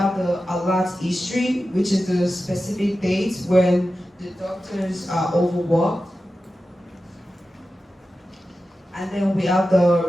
the alert history, which is the specific dates when the doctors are overworked. And then we have the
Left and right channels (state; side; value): normal; both; correlation 0.93